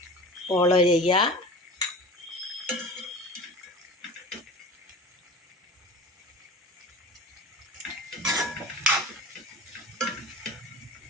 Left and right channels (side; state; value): both; normal; correlation 0.36